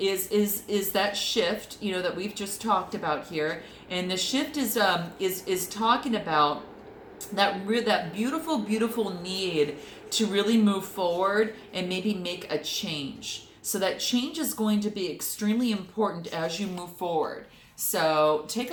that shift, that we've just talked about here, and the shift is talking about that beautiful need to really move forward and maybe make a change. So that change is going to be extremely important as you move forward. So take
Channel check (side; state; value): both; identical; correlation 1.00